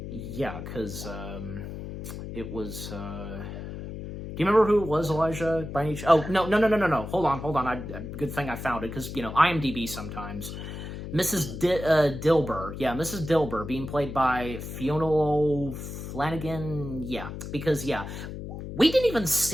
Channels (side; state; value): left; noise; hum, 8 dB below the sound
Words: because, it was, do you remember who it was, Elijah, by any chance? Oh, no, hold on, good thing I found it, because, IMDb sometimes. Mrs. Dilber. Yeah, Mrs. Dilber, being played by Fiona Flanagan. Yeah, because, we didn't even